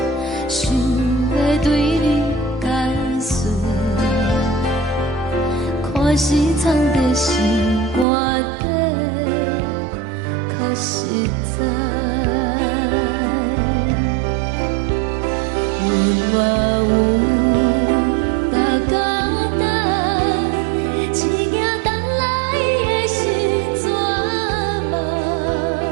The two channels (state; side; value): drops out; left; at 8.1 s